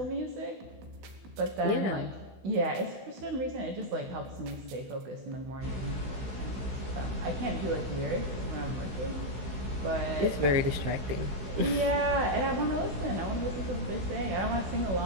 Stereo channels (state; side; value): late; left; 16 ms